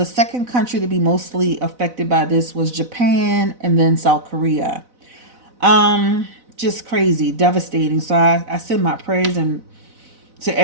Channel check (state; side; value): late; left; 4.0 ms